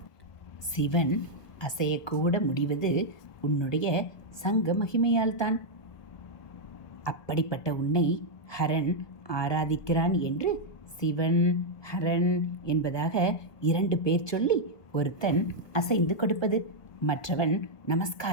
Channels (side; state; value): right; late; 1.2 ms